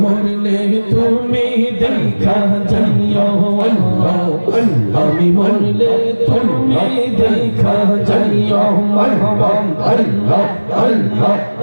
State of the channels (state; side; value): inverted; both; correlation -1.00